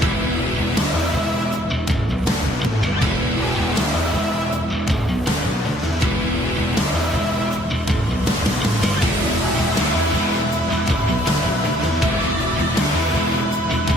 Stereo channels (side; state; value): both; normal; correlation 0.63